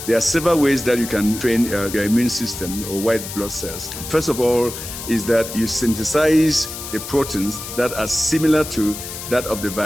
There are several ways that you can train your immune system or white blood cells. First of all is that you synthesize the proteins that are similar to that of the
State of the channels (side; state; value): left; noise; hiss, 9 dB below the sound